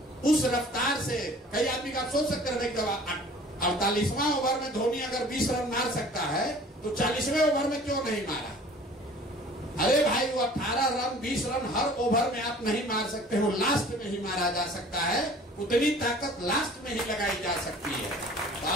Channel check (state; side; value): normal; both; correlation 0.48